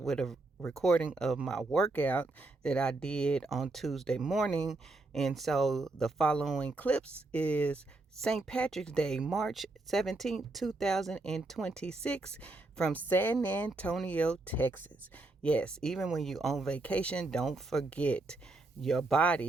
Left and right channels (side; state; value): left; quieter; 3.1 dB